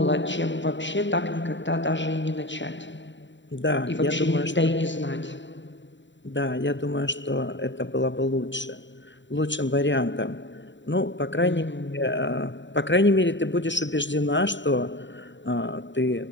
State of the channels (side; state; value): right; late; 0.54 ms